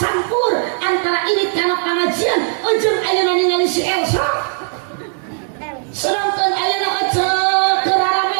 antara irit kana pangajian jeung ayeuna ningali si Elsa. Sedangkan ayeuna eceuk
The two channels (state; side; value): silent; left; 65 dB below the other